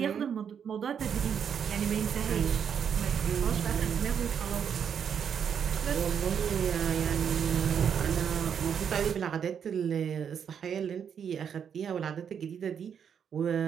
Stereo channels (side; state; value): left; quieter; 7.7 dB